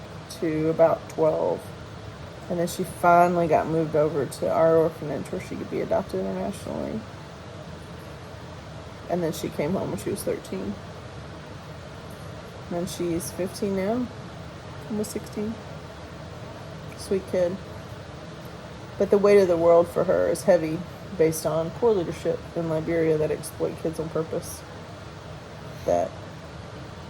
to about 12, and then she finally got moved over to our orphanage where she could be adopted internationally. And then she came home when she was 13. And she's 15 now, almost 16. Sweet kid. But the weight of the world for her is heavy based on poor leadership in Liberia that exploit kids on purpose. That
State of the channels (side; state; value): both; identical; correlation 1.00